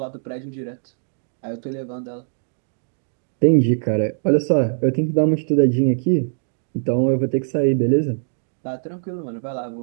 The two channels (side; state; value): left; silent; digital silence